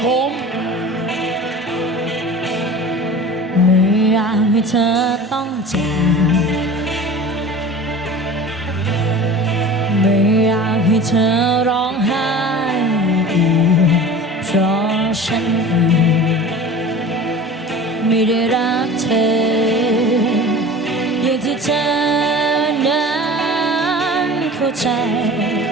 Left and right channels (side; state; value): both; normal; correlation 0.38